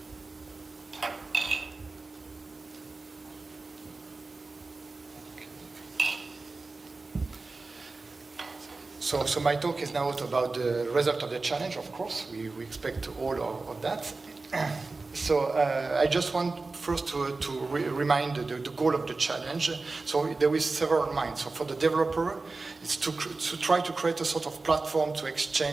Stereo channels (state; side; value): quieter; left; 3.6 dB